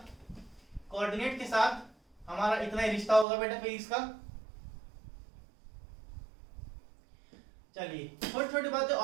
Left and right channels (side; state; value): left; drops out; at 3.2 s